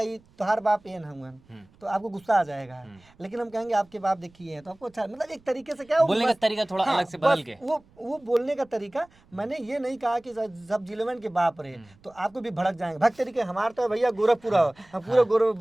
ये तुम्हार बाप ये हुआ, तो आपको गुस्सा आ जाएगा, लेकिन हम कहेंगे आपके बाप देखिए हैं तो आपको अच्छा, मतलब एक तरीके से क्या वो बोलने का तरीका थोड़ा अलग से बदल बस के। वो बोलने का तरीका। मैंने ये नहीं कहा कि सब जिलेवन के बाप रहे तो आपको भी भड़क जाएंगे, भक्त तरीके हमारे तो भैया गोरखपुर हो, हम पूरा गोरख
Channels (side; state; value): right; noise; rumble, 29 dB below the sound